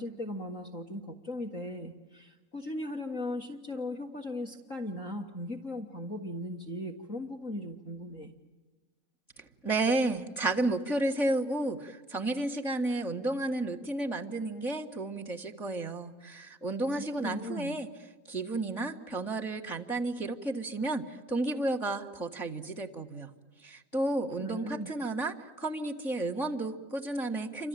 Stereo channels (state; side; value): late; right; 3.5 ms